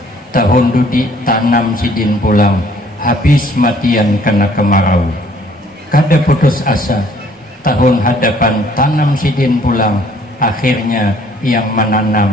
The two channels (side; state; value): both; normal; correlation 0.59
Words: tahun dudi tanam sidin pulang, habis matian kena kemarau. Kada putus asa, tahun hadapan tanam sidin pulang, akhirnya yang